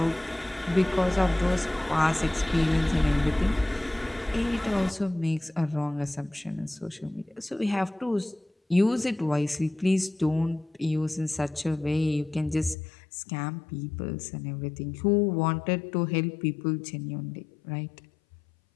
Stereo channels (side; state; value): right; drops out; at 12.8 s